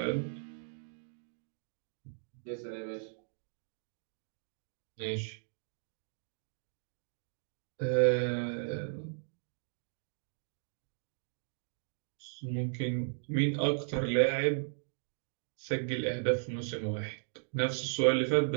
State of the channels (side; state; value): left; silent; digital silence